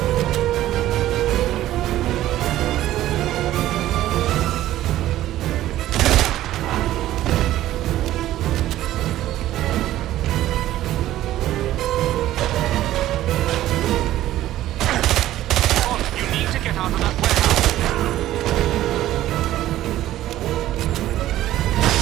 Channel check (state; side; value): quieter; left; 14.1 dB